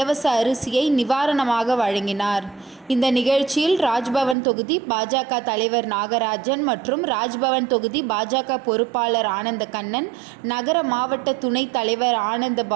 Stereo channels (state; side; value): drops out; left; at 4.4 s